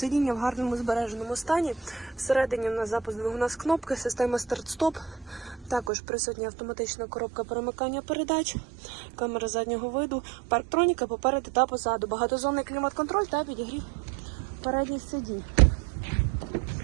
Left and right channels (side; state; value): left; drops out; at 5.9 s